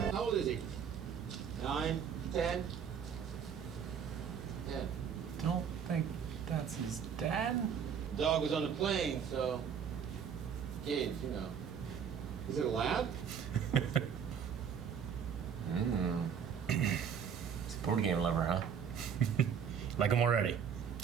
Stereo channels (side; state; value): left; quieter; 7.4 dB